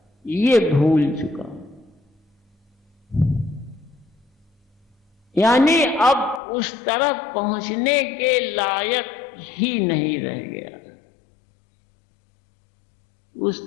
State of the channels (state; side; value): drops out; right; at 6.4 s